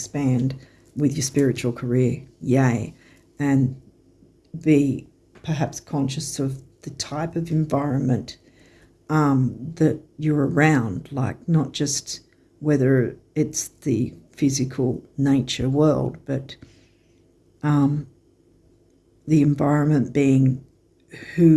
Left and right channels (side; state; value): both; identical; correlation 1.00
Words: with your spiritual career. Yay. And be perhaps conscious of the type of environment that you're around, like not just whether it's the physical nature world, but the environment being